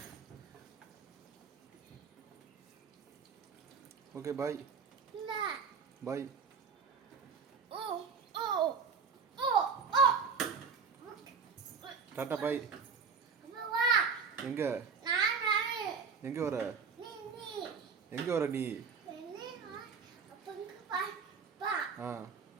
ஓகே பாய். பாய். டாட்டா பாய். எங்க எங்க வர? எங்க வர நீ? ஆ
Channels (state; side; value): quieter; left; 5.7 dB